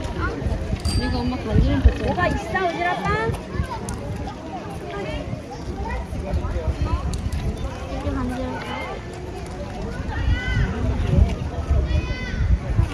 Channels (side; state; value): both; identical; correlation 1.00